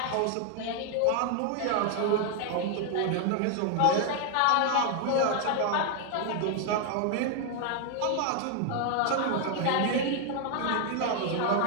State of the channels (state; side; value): different; both; correlation 0.00